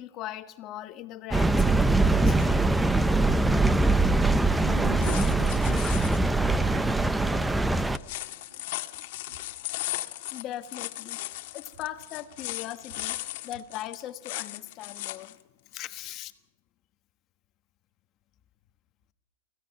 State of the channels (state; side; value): normal; both; correlation 0.79